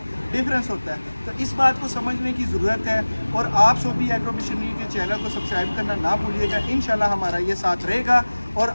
डिफरेंस होता है। तो इस बात को समझने की ज़रूरत है और आप सोबी एग्रो मशीनरी के चैनल को सब्सक्राइब करना ना भूलिएगा। इंशाल्लाह हमारा ये साथ रहेगा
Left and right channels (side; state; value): both; inverted; correlation -1.00